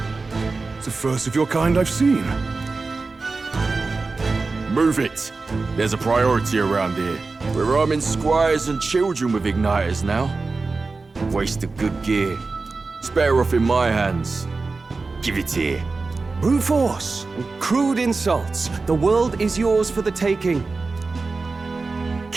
It's the first of your kind I've seen. Move it. There's a priority around here. We're arming squires and children with igniters now. Waste of good gear. It's better off in my hands. Give it here. Brute force and crude insults. The world is yours for the taking.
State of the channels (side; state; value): left; quieter; 3.9 dB